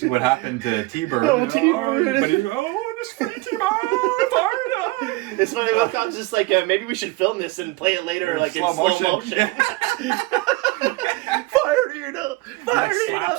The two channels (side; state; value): left; quieter; 21.9 dB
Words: happened to T-Bird. T-Bird. But he's this free T-Bird. It's funny, Wincott's just like, maybe we should film this and play it later in slow motion. Fire Nina! Fire Nina!